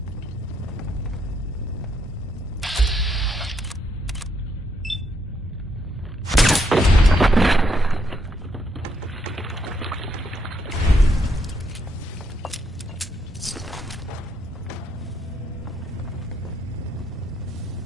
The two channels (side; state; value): both; normal; correlation 0.75